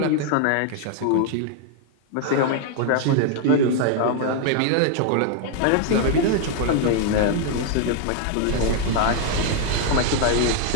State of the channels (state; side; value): different; both; correlation 0.00